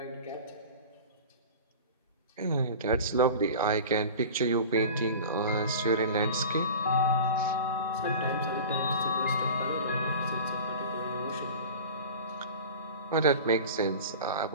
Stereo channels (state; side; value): inverted; both; correlation -0.35